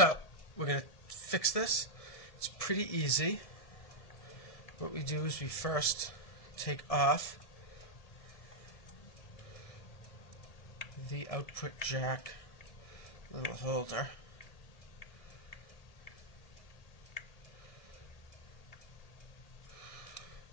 we're going to fix this. It's pretty easy. What we do is we first take off the output jack little holder.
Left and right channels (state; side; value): late; right; 1.7 ms